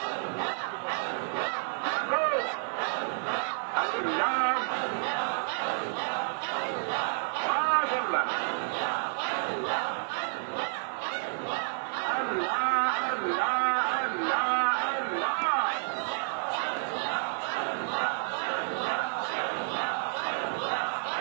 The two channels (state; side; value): silent; left; 58 dB below the other